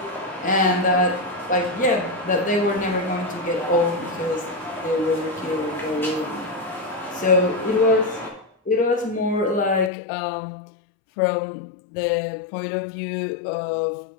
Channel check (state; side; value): drops out; right; at 9.9 s